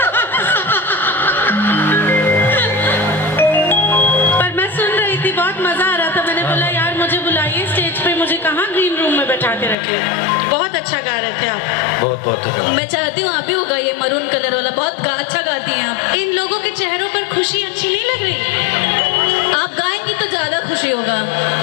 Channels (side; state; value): right; drops out; at 9.8 s